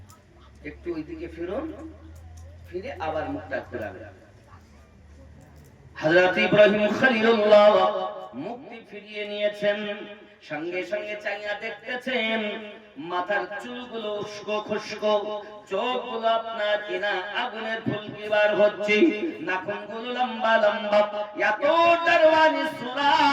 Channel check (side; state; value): both; identical; correlation 1.00